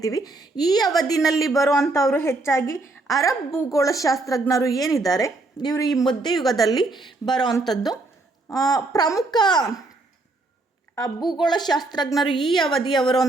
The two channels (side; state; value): left; quieter; 3.1 dB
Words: ಈ ಅವಧಿನಲ್ಲಿ ಬರುವಂಥವರು ಹೆಚ್ಚಾಗಿ ಅರಬ್ ಭೂಗೋಳಶಾಸ್ತ್ರಜ್ಞರು ಏನಿದ್ದಾರೆ ಇವರು ಈ ಮಧ್ಯಯುಗದಲ್ಲಿ ಬರುವಂಥದ್ದು. ಪ್ರಮುಖ ಭೂಗೋಳಶಾಸ್ತ್ರಜ್ಞರು ಈ ಅವಧಿಯವರು